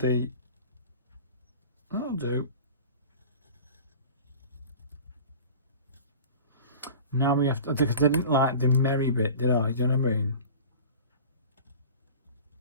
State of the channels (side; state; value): both; inverted; correlation -0.39